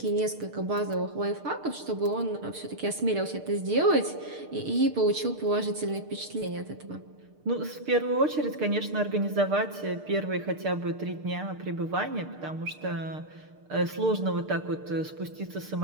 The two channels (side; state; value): left; late; 6.6 ms